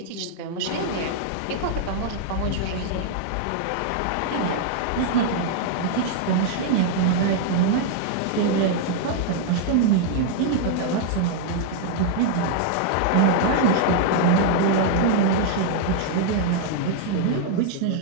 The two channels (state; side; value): different; both; correlation -0.01